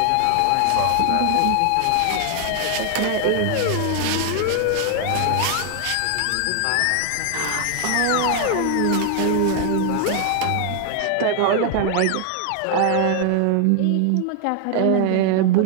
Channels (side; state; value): both; different; correlation 0.00